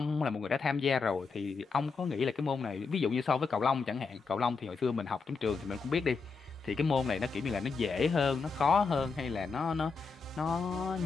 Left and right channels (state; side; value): quieter; right; 4.8 dB